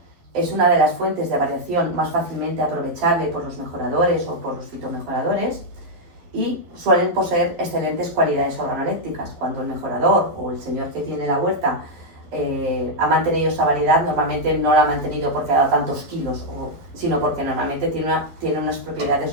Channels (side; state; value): left; late; 11 ms